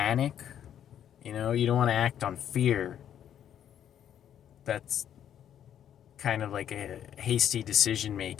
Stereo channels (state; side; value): quieter; right; 9.9 dB